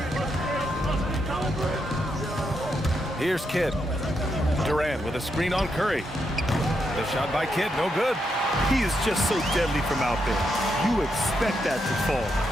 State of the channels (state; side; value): normal; both; correlation 0.81